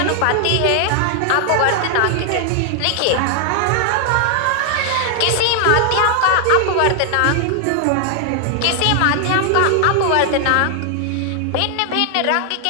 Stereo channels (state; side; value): different; both; correlation 0.00